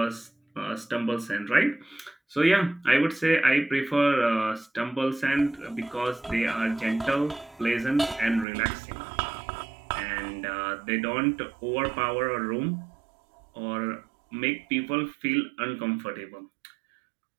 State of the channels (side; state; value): left; drops out; at 8.5 s